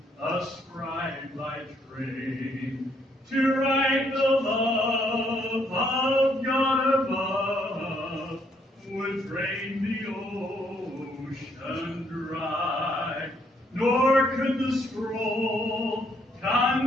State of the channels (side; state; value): both; normal; correlation 0.70